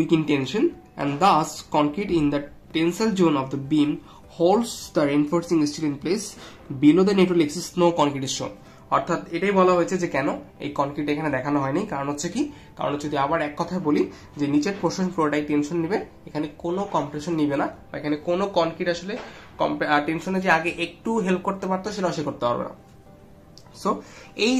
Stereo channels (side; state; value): both; identical; correlation 1.00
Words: in tension and thus concrete in the tensile zone of the beam holds the reinforcing steel in place below the neutral axis no concrete is shown. অর্থাৎ এটাই বলা হয়েছে যে কেন এই কনক্রিট এখানে দেখানো হয়নি, কারণ হচ্ছে কি, কারণ যদি আবার এক কথায় বলি যে নিচের পোর্শন পুরোটাই টেনশন নিবে, এখানে কোনো কম্প্রেশন নিবে না, বা এখানে কোনো কনক্রিট আসলে টেনশনে যে আগে একটু হেল্প করতে পারতো সেটা সে করতে পারবে না। সো এই